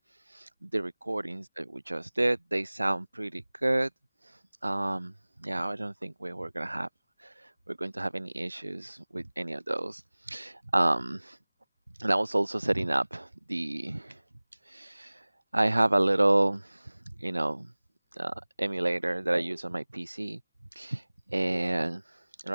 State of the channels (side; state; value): both; inverted; correlation -1.00